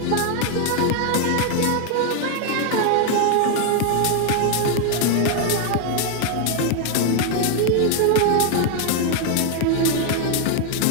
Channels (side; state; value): both; different; correlation 0.00